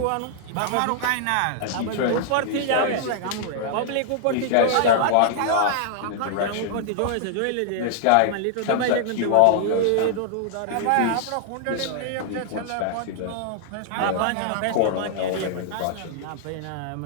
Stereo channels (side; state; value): both; different; correlation -0.01